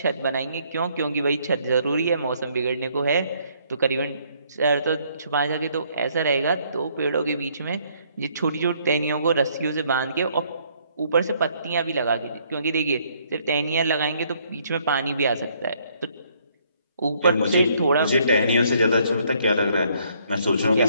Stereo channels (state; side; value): inverted; both; correlation -0.67